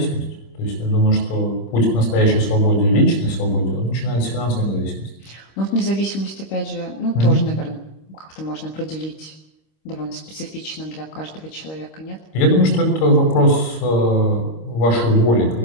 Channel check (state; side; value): late; right; 26 ms